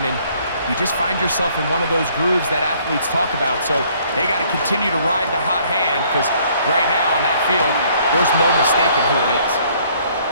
and you just find yourself in one of those grooves that athletes talk about. So they got to continue to ride the hot hand, because right now on that field, there's no mistaking who it is.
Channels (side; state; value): both; inverted; correlation -0.62